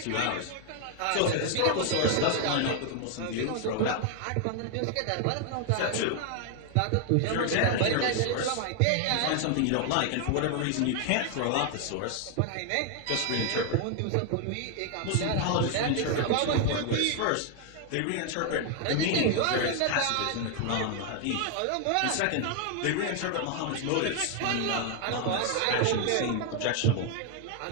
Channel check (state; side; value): different; both; correlation 0.00